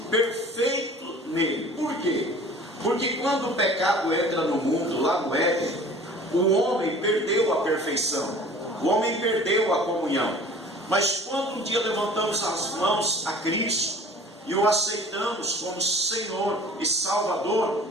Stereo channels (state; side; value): normal; both; correlation 0.46